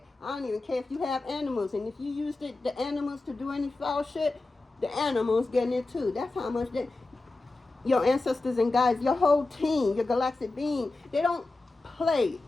I don't even care if you have animals, and if you use the animals to do any foul shit, the animals getting it too. That's how much your ancestors and guides, your whole team, your galactic being, they don't play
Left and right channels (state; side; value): quieter; right; 3.2 dB